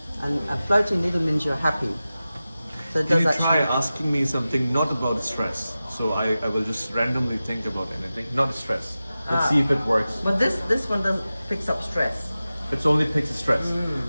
And a floating needle means you're happy. So it Can does you try actually. asking me something not about stress? So I will just randomly think about anything, not stress. Let's see if it works. But this one doesn't picks up stress. It's only picks stress.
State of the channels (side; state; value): both; inverted; correlation -0.95